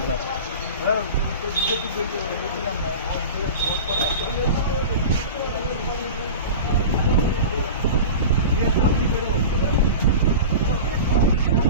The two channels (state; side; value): inverted; both; correlation -0.31